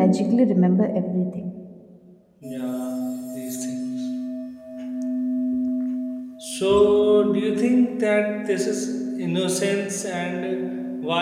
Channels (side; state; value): both; identical; correlation 1.00